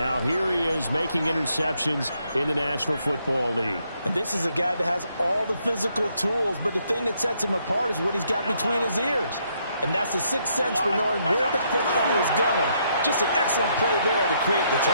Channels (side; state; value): both; inverted; correlation -0.73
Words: here he is making interceptions in the National Football League. And this is a guy that has all the physical tools, but the thing that sets him apart is what he's got between his ears. And that's the 6th sense for knowing where the football is going. Just an excellent play there to create the